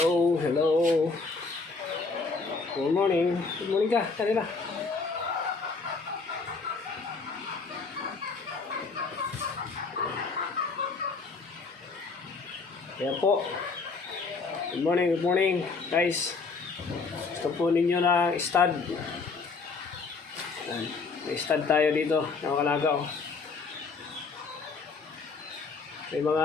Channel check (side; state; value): right; quieter; 4.4 dB